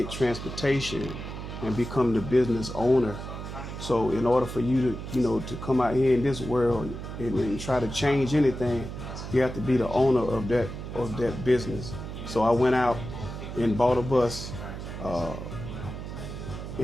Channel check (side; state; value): right; noise; hum, 8 dB below the sound